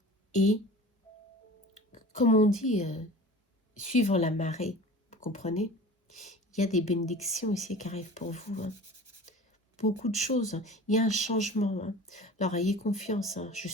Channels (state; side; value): normal; both; correlation 0.39